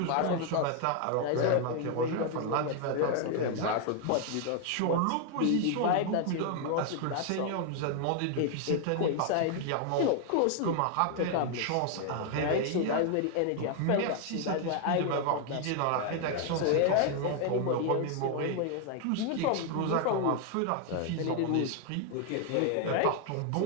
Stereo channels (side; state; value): both; different; correlation 0.00